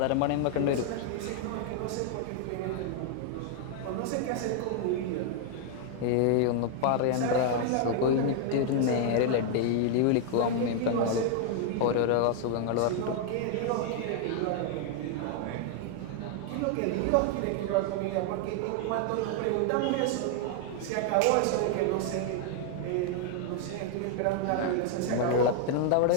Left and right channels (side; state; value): both; different; correlation 0.00